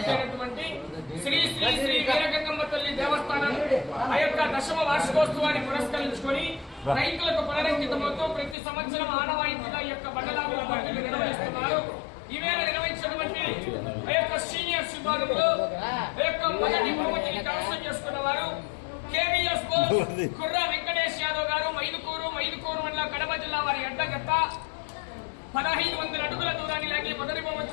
అయినటువంటి శ్రీ శ్రీ శ్రీ వీరగంగమ్మ తల్లి దేవస్థానం ఆ యొక్క దశమ వార్షికోత్సవాన్ని పురస్కరించుకొని రైతులకు పునరంకితమవుతూ ప్రతి సంవత్సరం ఆనవాయితీగా ఈ యొక్క బండలాగుల పండుగ నిర్వహిస్తున్నారు. ఈవేళ నిర్వహించినటువంటి ఆ యొక్క సీనియర్స్ విభాగంలో ఆ యొక్క మొదటి బహుమతిని కైవసం చేసుకున్న వారు కేవీఎస్ కుర్ర వెంకటేష్ యాదవ్ గారు మైదుకూరు మండలం కడప జిల్లా వారి అడ్డగత్త 1500 అడుగుల దూరాన్ని లాగి మొదటి బహుమతి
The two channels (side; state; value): right; drops out; at 8.6 s